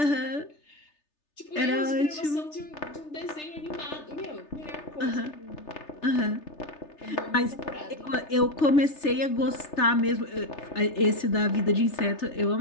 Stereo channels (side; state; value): right; late; 3.3 ms